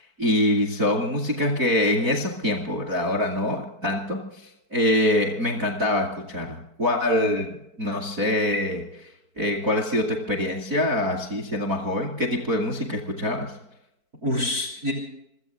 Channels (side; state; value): left; late; 4.5 ms